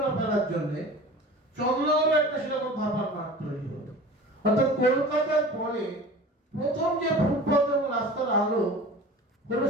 ফেলার জন্য, চন্দননগরে একটা সেরকম ধাপার মাঠ তৈরি হলো। অর্থাৎ কলকাতার পরে প্রথম যে ফুটপাত এবং রাস্তার আলো হলো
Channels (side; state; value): both; normal; correlation 0.39